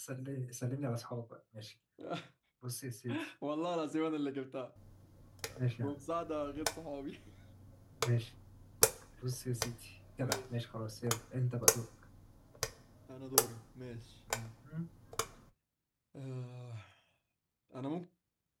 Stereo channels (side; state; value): both; identical; correlation 1.00